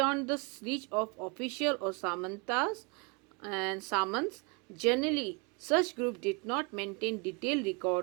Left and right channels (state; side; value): quieter; left; 30.3 dB